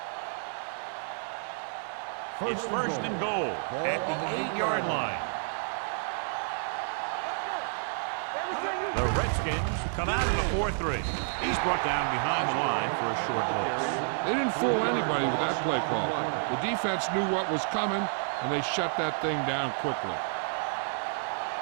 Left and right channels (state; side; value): silent; left; digital silence